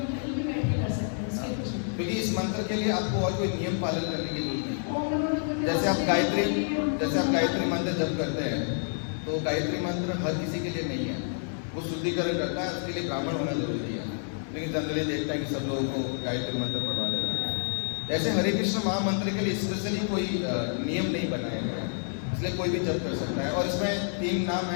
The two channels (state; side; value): silent; right; 57 dB below the other